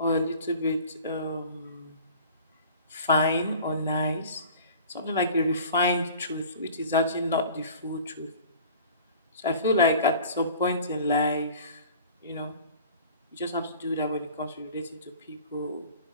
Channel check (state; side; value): inverted; both; correlation -0.45